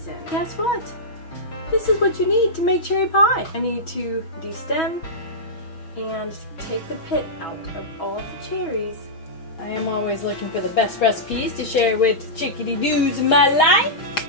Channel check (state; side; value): late; right; 6.6 ms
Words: Guess what? This is what you need to make cherry pie. I need to de-stem and take the pit out of all the cherries. I am always looking for the best recipes to share with chick-a-deedoos in my life.